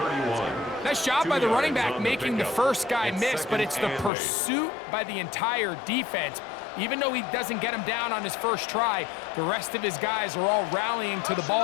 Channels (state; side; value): drops out; right; at 4.1 s